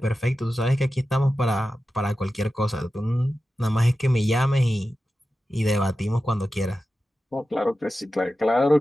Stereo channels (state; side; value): normal; both; correlation 0.93